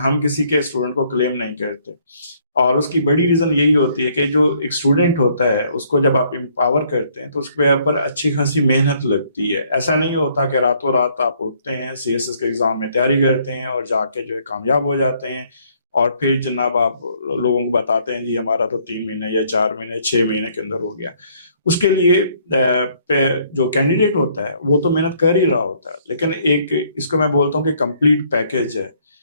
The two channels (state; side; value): inverted; both; correlation -0.65